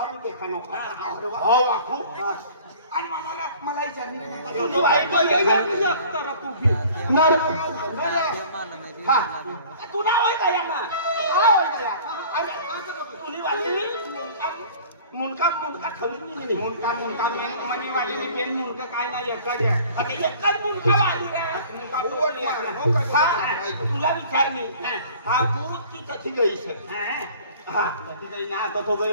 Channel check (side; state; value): both; inverted; correlation -0.47